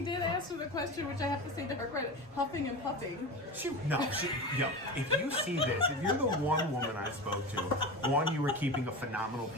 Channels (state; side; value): normal; both; correlation 0.26